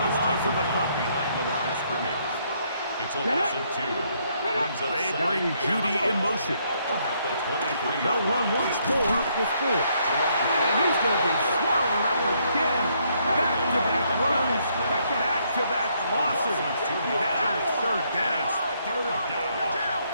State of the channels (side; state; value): both; inverted; correlation -0.71